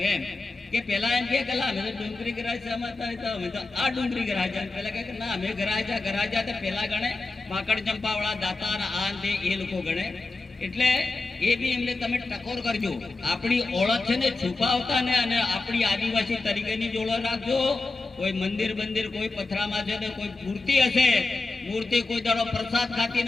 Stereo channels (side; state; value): right; quieter; 3.4 dB